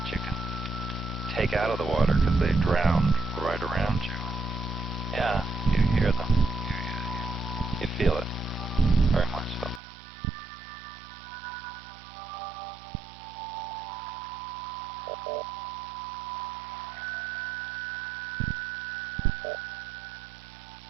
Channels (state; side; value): drops out; left; at 9.8 s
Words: you can take out of the water because they drowned right around you. Yeah, you hear them. You feel it. Very much so.